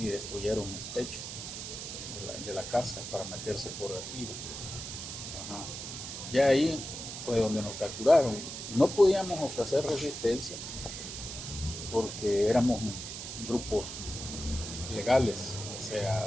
destruyeron el techo de la casa para meterse por arriba. Ajá. Ya ahí fue donde nos capturaron. No podíamos ofrecer resistencia porque éramos grupos legales, o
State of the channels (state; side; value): noise; right; hiss, 8 dB below the sound